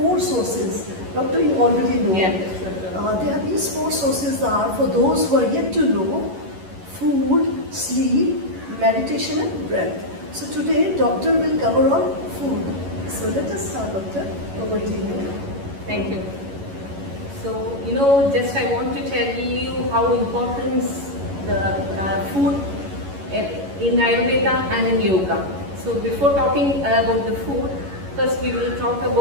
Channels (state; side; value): late; left; 11 ms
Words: sources. Doctor, you already know. Yeah. There are these 4 sources are for those who are yet to know: food, sleep, meditation and breath. So today, doctor will cover on food. So let us start, doctor. Over to you. Thank you. So, just I want to tell you how important the food in Ayurveda and in yoga. So before talking about the food, first we will talk